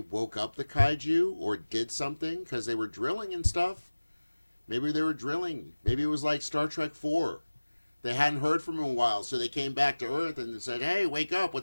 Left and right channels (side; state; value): both; inverted; correlation -1.00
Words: woke up the kaiju or did something because they were drilling and stuff. Maybe they were drilling. Maybe it was like Star Trek 4. They hadn't heard from them in a while, so they came back to Earth and said, "Hey, wake up,